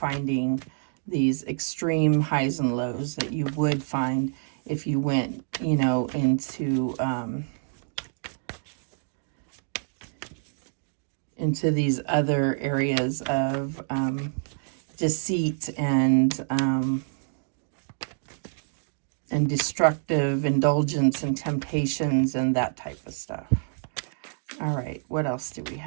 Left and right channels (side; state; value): left; silent; digital silence